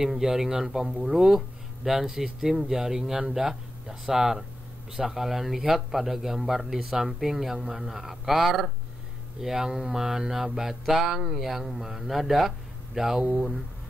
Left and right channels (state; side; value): normal; both; correlation 0.88